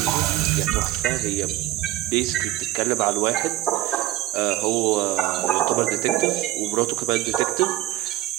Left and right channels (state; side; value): quieter; left; 15.4 dB